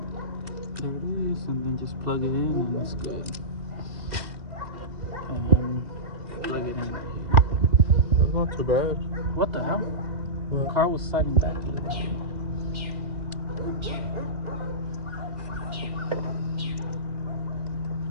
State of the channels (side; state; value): left; late; 2.1 ms